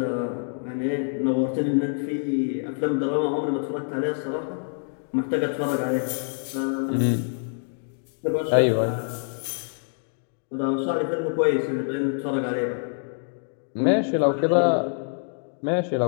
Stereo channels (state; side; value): silent; right; 61 dB below the other